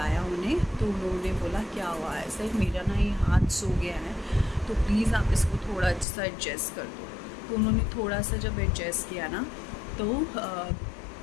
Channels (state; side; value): drops out; right; at 6.1 s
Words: उन्हें, तो उन्होंने बोला क्या हुआ है? ऐसा मेरा ना ये हाथ सो गया है, तो प्लीज़ आप इसको थोड़ा सा एडजस्ट कर दो। तो उन्होंने थोड़ा सा जब एडजस्ट किया ना, तो